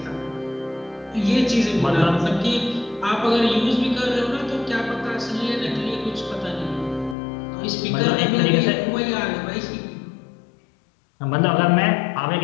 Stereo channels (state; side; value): drops out; right; at 7.2 s